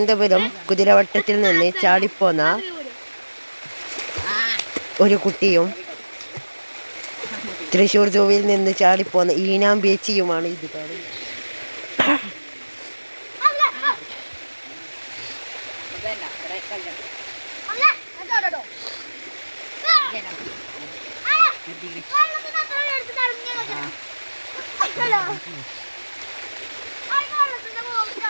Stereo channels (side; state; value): both; inverted; correlation -1.00